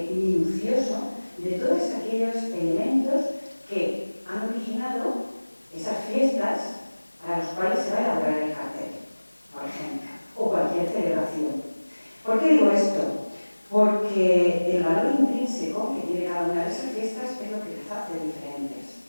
minucioso de todos aquellos elementos que han originado esas fiestas a las cuales se va a elaborar el cartel, por ejemplo, o cualquier celebración. ¿Por qué digo esto? Porque el valor intrínseco que tiene cada una de esas fiestas es lo que las hace diferentes.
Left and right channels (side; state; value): both; inverted; correlation -1.00